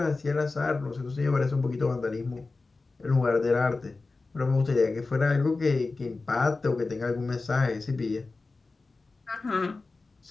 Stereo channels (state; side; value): quieter; right; 3.7 dB